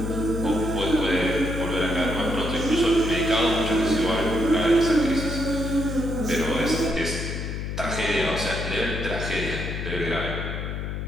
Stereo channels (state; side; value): noise; left; hum, 4 dB below the sound